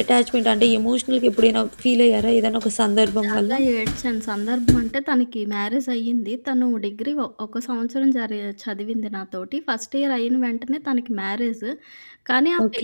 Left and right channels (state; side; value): inverted; both; correlation -1.00